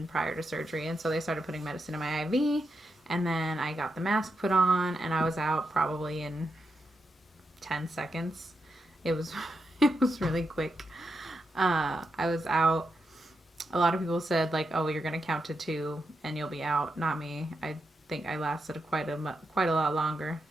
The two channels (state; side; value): normal; both; correlation 0.85